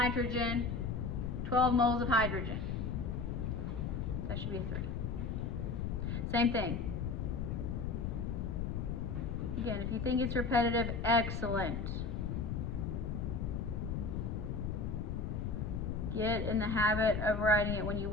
12 moles of hydrogen, that should be a 3. Same thing. Again, if you think it's repetitive, excellent. Get in the habit of writing it. When you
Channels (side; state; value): left; noise; rumble, 2 dB below the sound